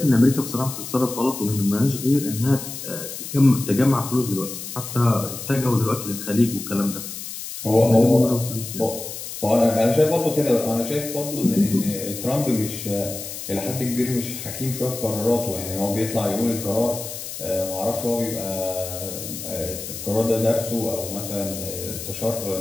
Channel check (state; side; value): noise; left; hiss, 9 dB below the sound